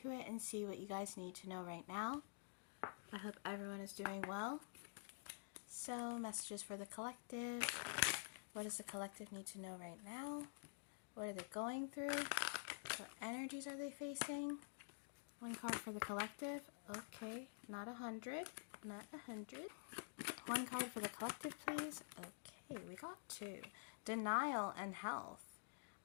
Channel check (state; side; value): silent; right; digital silence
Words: it and see what you guys need to know right now. I hope everyone is doing well. So, messages for the collective. What does the collective need to know right now? What are they going through? What energies are they facing? One card for the collective. Okay, not 100. Not 100. One card for the collective, please. Okay, we got two. Denial and health.